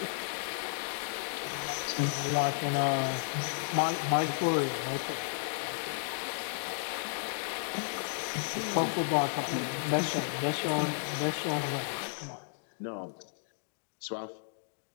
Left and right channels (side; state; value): right; silent; digital silence